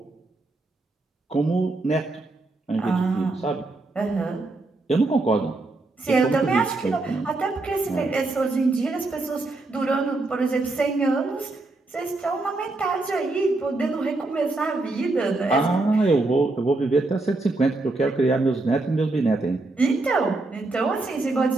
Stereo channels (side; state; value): left; quieter; 3.2 dB